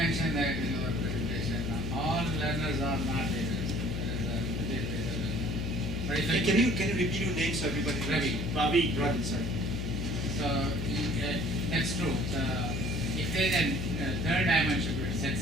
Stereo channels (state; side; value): noise; left; hum, 3 dB below the sound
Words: that in your presentation, all learners are not leaders. There is a particular learner. But if I Can you repeat your name so everybody knows? Ravi. Ravi, sorry. So that's true. So if there is a third dimension to it,